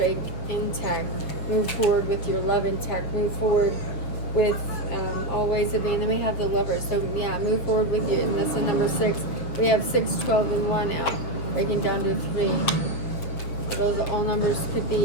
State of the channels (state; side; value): late; right; 7.1 ms